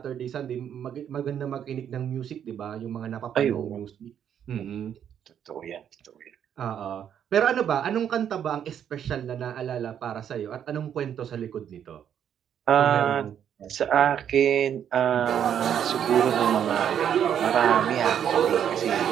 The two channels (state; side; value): quieter; left; 9.1 dB